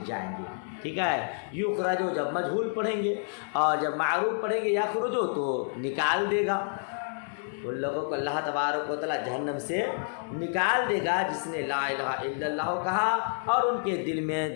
جائیں گے۔ ٹھیک ہے، یخرجو جب مجہول پڑھیں گے اور جب معروف پڑھیں گے یخرجو تو نکال دے گا۔ ان لوگوں کو اللہ تبارک و تعالیٰ جہنم سے نکال دے گا جس نے لا الہ الا اللہ کہا اور ان کے دل میں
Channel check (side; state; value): right; silent; digital silence